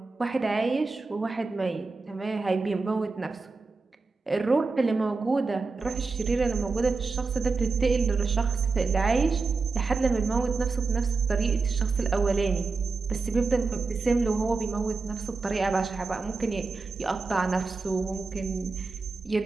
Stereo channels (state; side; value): quieter; left; 4.1 dB